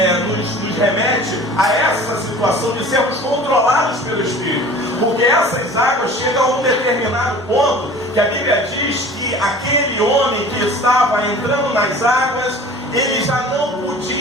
nos remete a essa situação de sermos controlados pelo Espírito, porque essas águas chegam a um determinado ponto que a Bíblia diz que aquele homem que estava entrando nas águas, ele já não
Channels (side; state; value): right; noise; hum, 25 dB below the sound